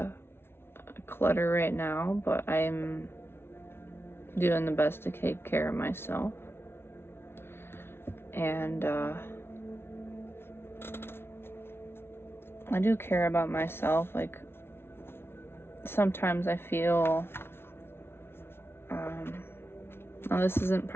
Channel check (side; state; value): right; late; 0.12 ms